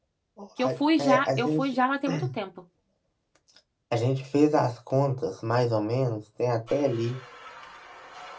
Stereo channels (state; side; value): identical; both; correlation 1.00